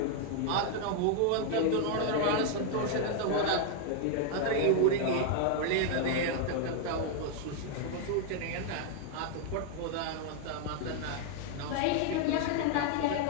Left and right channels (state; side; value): different; both; correlation 0.00